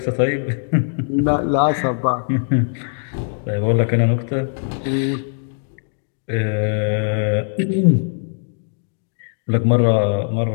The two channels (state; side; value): silent; right; digital silence